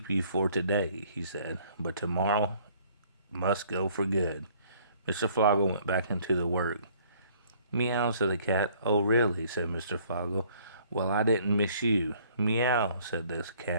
you for today," he said, "but tomorrow must go for good." Mr. Floggle went back into the work. "Meow," said the cat. "Oh, really?" said Mr. Floggle. "Well, I didn't miss you." "Meow," said this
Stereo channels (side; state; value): both; inverted; correlation -0.58